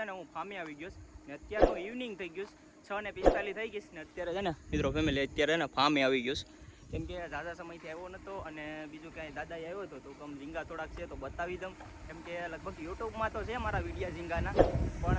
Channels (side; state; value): both; identical; correlation 1.00